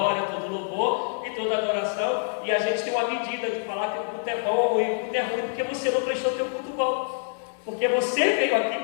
todo louvor e toda adoração. E a gente tem uma medida de falar que o culto é bom e o culto é ruim porque você não prestou teu culto bom, porque você veio aqui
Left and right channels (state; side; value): silent; right; 61 dB below the other